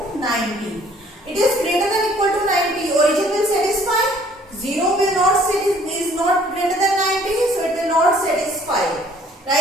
90. It is greater than equal to 90. Origin will satisfy. 0 will not is not greater than 90, so it will not satisfy.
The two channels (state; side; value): normal; both; correlation 0.58